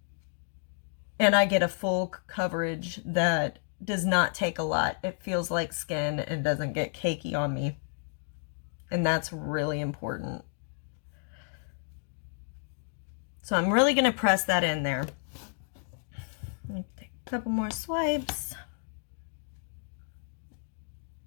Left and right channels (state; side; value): silent; right; digital silence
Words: And I get a full coverage that does not take a lot. It feels like skin and doesn't get cakey on me. And that's really important. So I'm really going to press that in there. Take a couple more swipes.